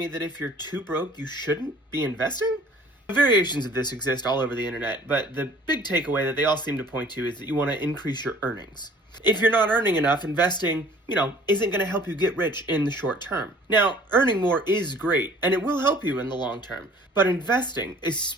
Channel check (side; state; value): both; normal; correlation 0.52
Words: that if you're too broke, you shouldn't be investing? Variations of this exist all over the internet, but the big takeaway that they all seem to point to is that you want to increase your earnings. If you're not earning enough, investing, isn't going to help you get rich in the short term. Now, earning more is great, and it will help you in the long term. But investing,